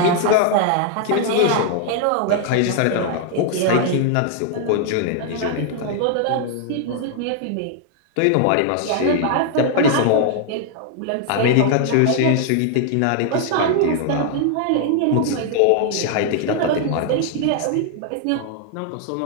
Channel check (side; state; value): both; different; correlation 0.00